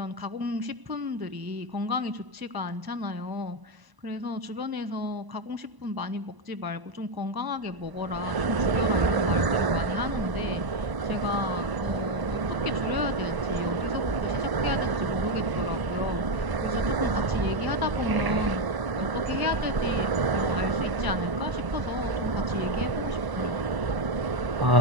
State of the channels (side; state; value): left; late; 1.0 ms